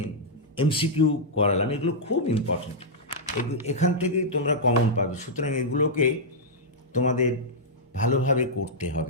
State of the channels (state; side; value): normal; both; correlation -0.08